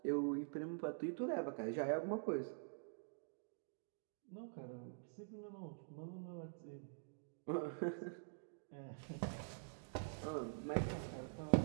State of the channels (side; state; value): left; silent; digital silence